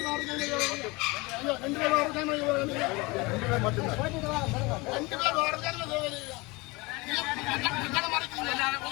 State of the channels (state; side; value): quieter; right; 24.8 dB